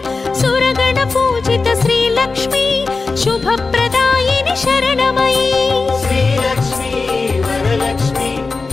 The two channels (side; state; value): right; quieter; 4.0 dB